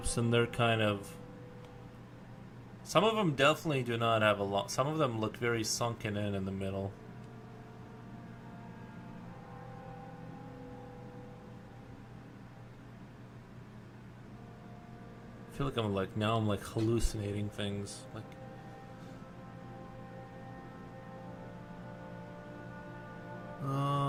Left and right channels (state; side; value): identical; both; correlation 1.00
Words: and they're kind of... Some of them definitely do not have a lot. Some of them look very sunken in the middle. I feel like I'm hallucinating things.